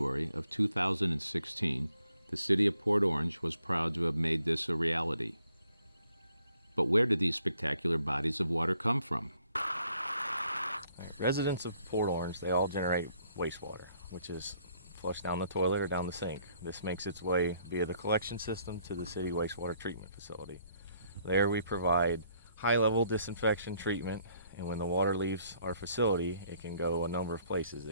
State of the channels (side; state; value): both; inverted; correlation -0.67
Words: of 2016, the city of Port Orange was proud to have made this a reality. But where did these spectacular bodies of water come from? Residents of Port Orange, they all generate wastewater, which is flushed down the toilet or down the sink. This makes its way via the collection system to the city wastewater treatment facility. There we provide high-level disinfection treatment, and when the water leaves our facility, it can go a number of places.